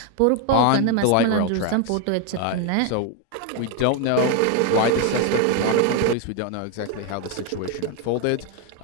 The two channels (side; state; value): both; different; correlation 0.01